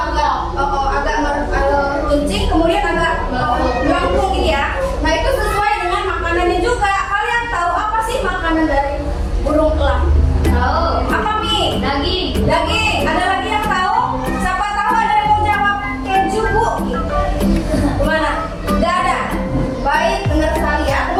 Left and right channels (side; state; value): both; identical; correlation 1.00